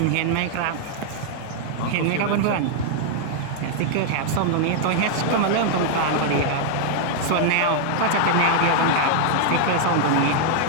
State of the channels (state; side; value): different; both; correlation 0.00